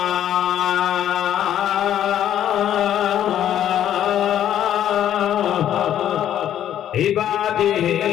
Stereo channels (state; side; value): quieter; right; 10.9 dB